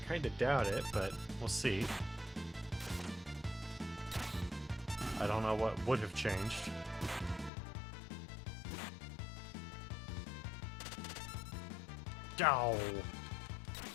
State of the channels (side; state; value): right; drops out; at 7.5 s